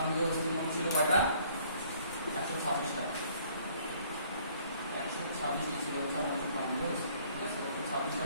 অস্থি মোট ছিল কয়টা? 126টা। 126টি ছিল হচ্ছে আমাদের উপাঙ্গীয় অস্থি, ঠিক আছে?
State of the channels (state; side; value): inverted; both; correlation -0.60